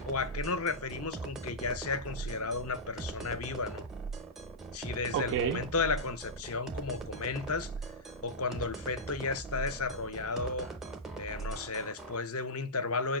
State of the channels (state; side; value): normal; both; correlation -0.11